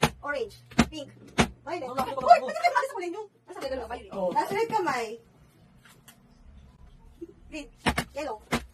Orange. Pink. Violet. Wala ko, Uy, wala ko. pati kayo sa kulay nyo. Nasa gano'n kamay. Oh. Nasa red kamay. Green. Yellow.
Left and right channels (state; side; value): identical; both; correlation 1.00